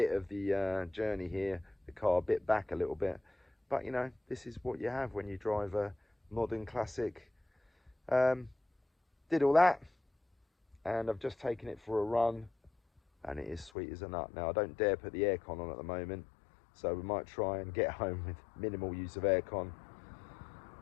of the journey here, the car bit back a little bit. But you know, this is what you have when you drive a modern classic. Did all that, and I've just taken it for a run, and it is sweet as a nut. Now, I don't dare put the aircon on at the moment, so we might try and get home with minimal use of aircon.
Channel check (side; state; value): right; drops out; at 13.7 s